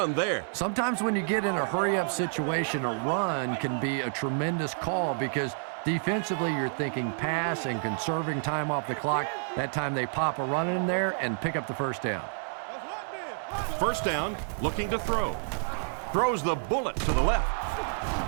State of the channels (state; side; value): silent; left; 58 dB below the other